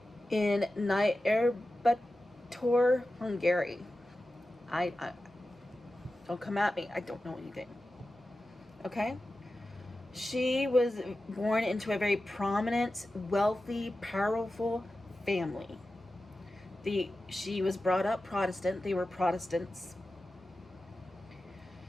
In Nyírbátor, Hungary. I don't come at me. I don't know anything. Okay? She was born into a very prominent, wealthy, powerful family. She was brought up Protestant. They were Protestants.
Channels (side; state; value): both; normal; correlation 0.93